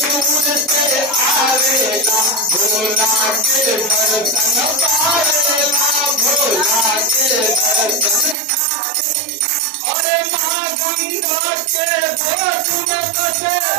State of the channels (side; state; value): left; drops out; at 8.3 s